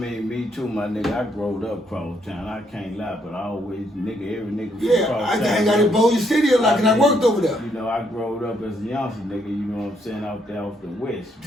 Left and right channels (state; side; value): normal; both; correlation 0.73